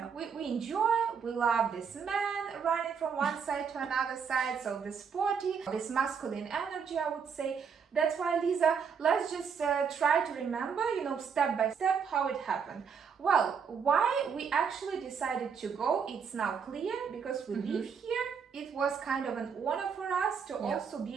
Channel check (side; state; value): left; quieter; 6.4 dB